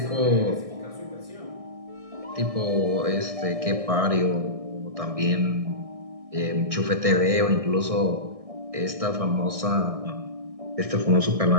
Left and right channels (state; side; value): late; left; 1.6 ms